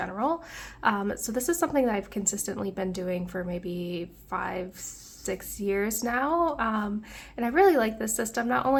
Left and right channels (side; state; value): both; identical; correlation 1.00